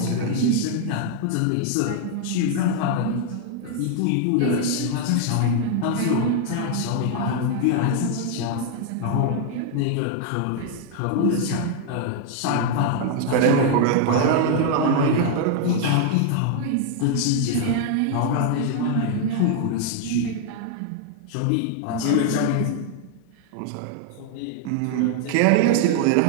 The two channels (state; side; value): different; both; correlation 0.00